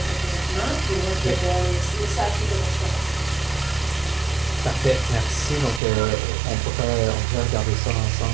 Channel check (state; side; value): drops out; left; at 5.8 s